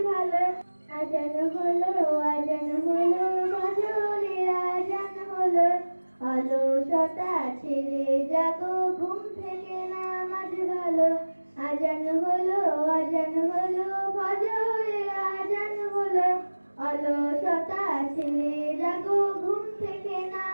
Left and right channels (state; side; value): inverted; both; correlation -1.00